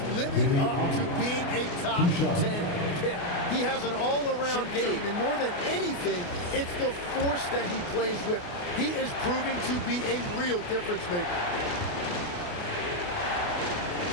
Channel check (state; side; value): late; right; 28 ms